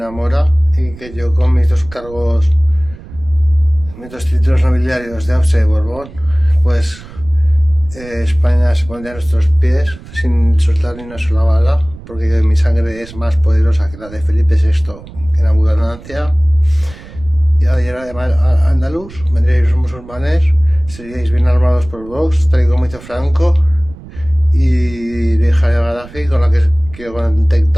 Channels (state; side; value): noise; right; rumble, 18 dB below the sound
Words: mora y que yo con mis dos cargos, mis dos títulos nobiliarios de Austrasia y Borbón, pues España se pondría a nuestros pies sin soltar ni una sola bala, porque mi sangre es más poderosa que la de Felipe VI en abundancia. Y además andaluz, vendríais los musulmanes, seríais bien armados por Vox, tal y como hizo Franco, y la hija de Gaddafi, con la que quiero